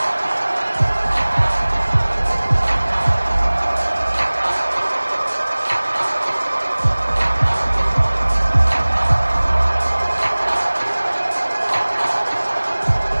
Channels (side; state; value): both; inverted; correlation -1.00